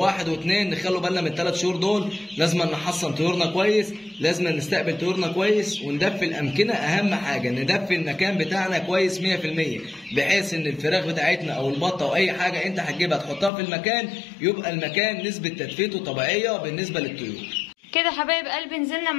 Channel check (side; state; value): right; drops out; at 13.5 s